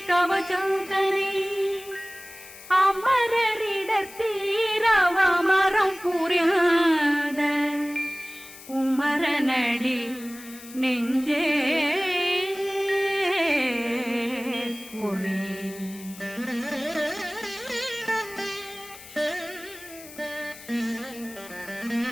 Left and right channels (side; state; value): left; noise; hiss, 17 dB below the sound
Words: கவசந்தனை அமரரிடர் தீரவமரம் புரியாத குமரனடி நெஞ்சே புரி